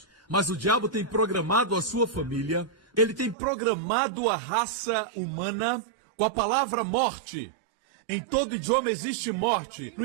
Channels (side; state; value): left; drops out; at 3.4 s